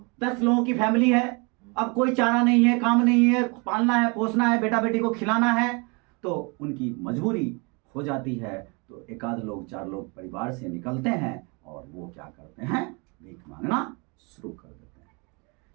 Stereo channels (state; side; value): quieter; left; 30.8 dB